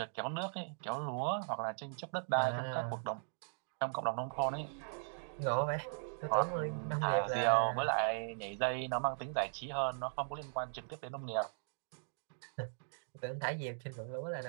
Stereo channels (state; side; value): silent; left; digital silence